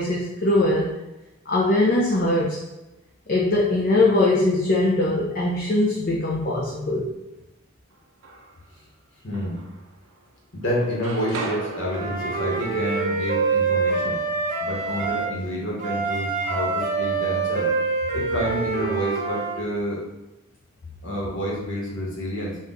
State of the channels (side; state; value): both; normal; correlation 0.26